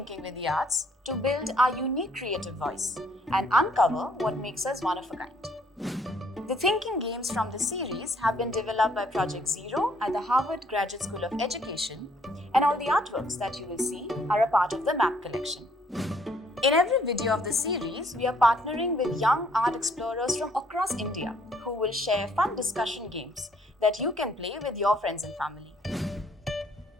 with the arts to build our unique creative voice and uncover what makes us one of a kind. The thinking games from the series have been developed by Project Zero at the Harvard Graduate School of Education, and all the artworks that you will see are a part of the MAP collection. In every video of the series, we are partnering with young art explorers from across India who will share fun discussion games that you can play with your friends and family.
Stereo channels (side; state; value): both; normal; correlation 0.65